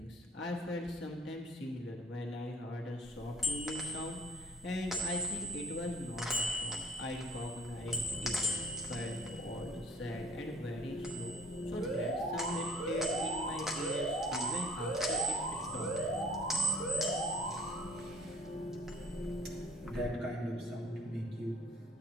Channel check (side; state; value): both; normal; correlation 0.52